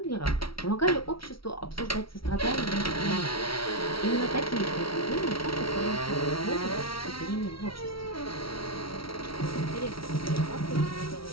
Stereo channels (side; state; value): right; late; 0.75 ms